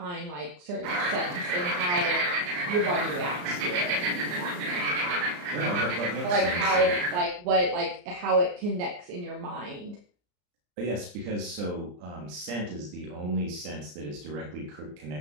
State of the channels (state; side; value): late; left; 34 ms